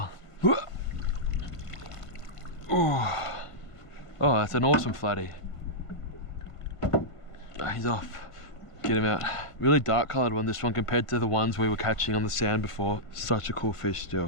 Oh, that's an awesome flatty. Oh, he's off. Get him out. Really dark coloured one, this one, compared to the ones we were catching on the sand before. Such a cool fish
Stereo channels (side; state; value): right; late; 1.5 ms